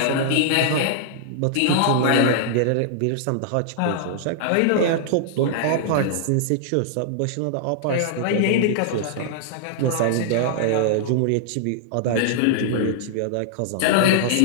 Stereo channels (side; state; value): both; different; correlation -0.01